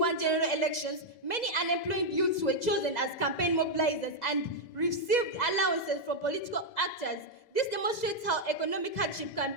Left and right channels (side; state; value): right; late; 2.0 ms